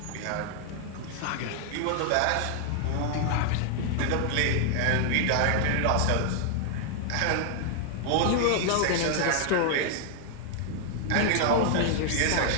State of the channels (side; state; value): both; different; correlation 0.00